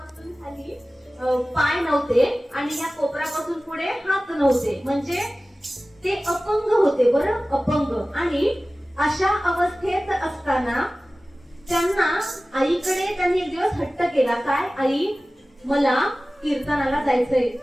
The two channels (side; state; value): both; normal; correlation 0.97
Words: खाली पाय नव्हते आणि या कोपरापासून पुढे हात नव्हते, म्हणजे ते अपंग होते. बरं, अपंग. आणि अशा अवस्थेत असताना त्यांना आईकडे त्यांनी एक दिवस हट्ट केला. काय? आई, मला कीर्तनाला जायचंय.